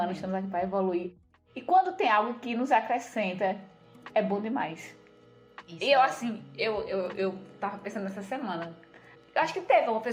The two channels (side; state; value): both; identical; correlation 1.00